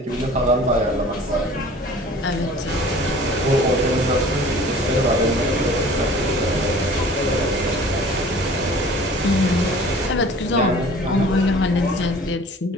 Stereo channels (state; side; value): normal; both; correlation 0.47